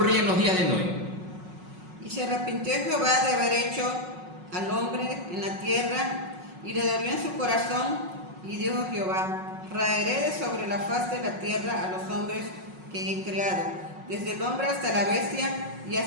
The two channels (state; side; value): late; left; 5.5 ms